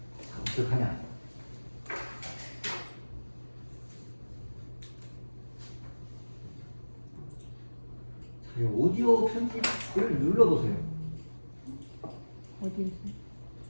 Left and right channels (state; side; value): inverted; both; correlation -1.00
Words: 어떻게 하냐? 자, 이 오디오 편집을 눌러보세요. 어디